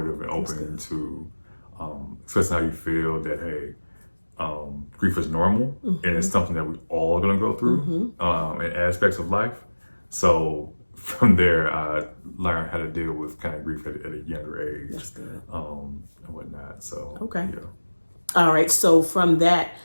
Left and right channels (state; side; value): inverted; both; correlation -1.00